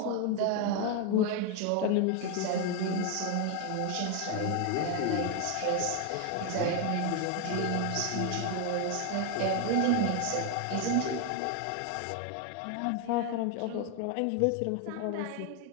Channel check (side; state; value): both; different; correlation 0.01